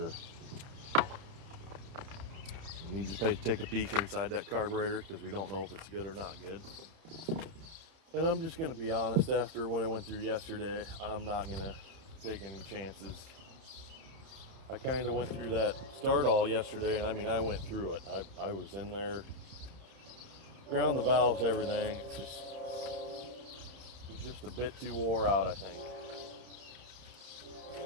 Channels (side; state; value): left; late; 31 ms